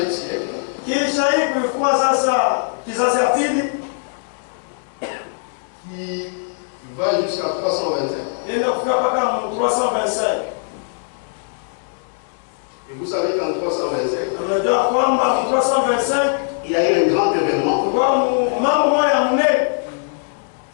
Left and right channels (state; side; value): silent; right; digital silence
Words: siècle. sasa kizazi ya pili qui va jusqu'à 325. inaenda kufika mpaka 325. Et vous savez qu'en 325, Unajua kwamba 325 il y a eu un grand événement kwa mambo moja mnene